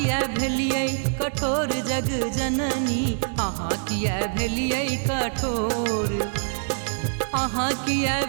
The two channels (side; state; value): left; silent; digital silence